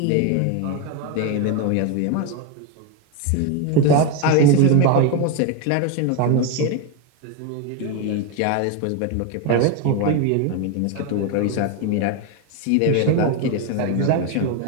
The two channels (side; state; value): both; different; correlation 0.02